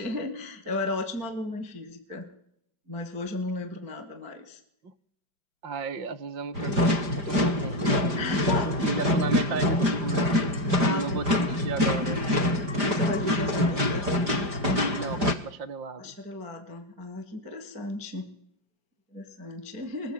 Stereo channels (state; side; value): late; left; 5.0 ms